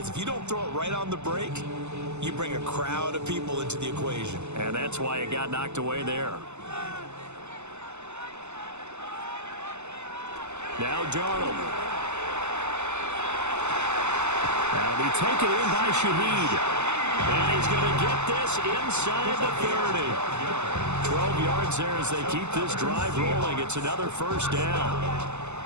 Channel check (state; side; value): late; left; 0.83 ms